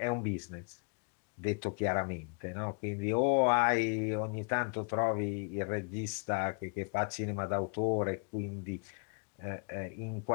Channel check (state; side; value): quieter; right; 36.7 dB